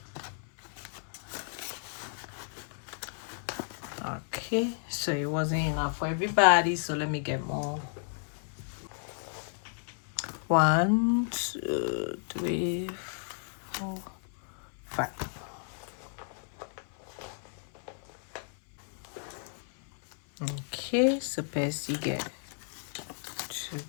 Okay, so it wasn't enough for everybody, so let me get more. 1, 2, 3, 4, 5. Okay, so Percy get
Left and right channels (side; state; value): right; silent; 56 dB below the other